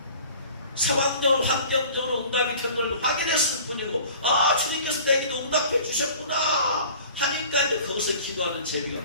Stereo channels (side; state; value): both; inverted; correlation -0.45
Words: 상황적으로 환경적으로 응답이 된 걸 확인했을 뿐이고, 주님께서 내 기도 응답해 주셨구나 하니까 이제 거기서 기도하는 재미가